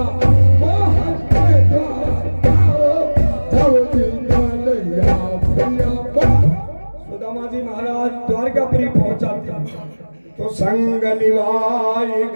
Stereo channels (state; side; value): inverted; both; correlation -1.00